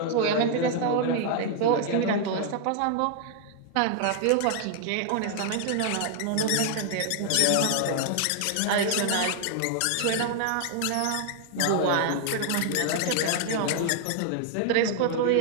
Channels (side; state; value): both; different; correlation 0.00